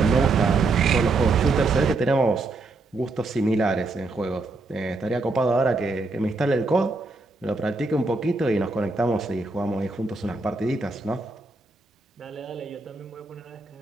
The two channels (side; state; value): left; quieter; 3.4 dB